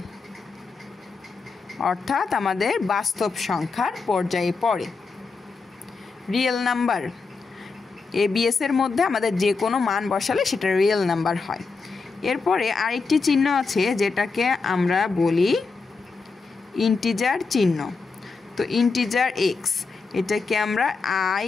অর্থাৎ আমাদের বাস্তব সংখ্যার পর্যায়ে পড়ে। রিয়েল নাম্বার ABS এর মধ্যে আমাদের যে কোনো মান বসালে সেটা রিয়েল নাম্বার হয়। এরপরে আরেকটি চিহ্ন আছে যেটাকে আমরা বলি ইন্টিজার চিহ্ন। তো ইন্টিজার এক্স, এটাকে আমরা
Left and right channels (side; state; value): right; quieter; 4.5 dB